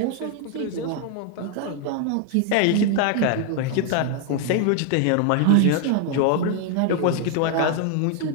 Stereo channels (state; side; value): different; both; correlation 0.00